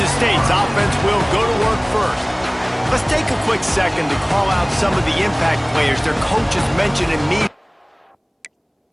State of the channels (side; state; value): both; identical; correlation 1.00